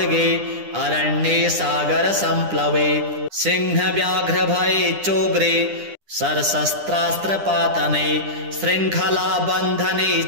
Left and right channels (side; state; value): left; late; 9.9 ms